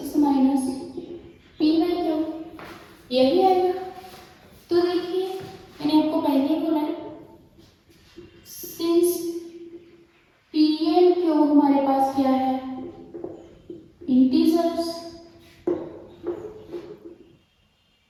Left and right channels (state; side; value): identical; both; correlation 1.00